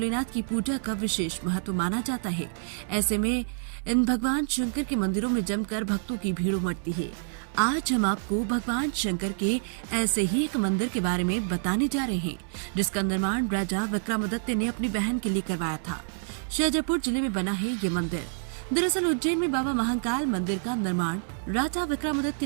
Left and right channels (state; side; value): silent; left; 60 dB below the other